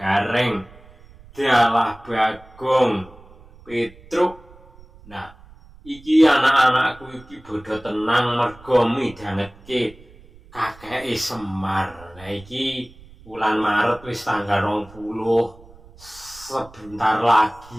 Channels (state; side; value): noise; right; rumble, 23 dB below the sound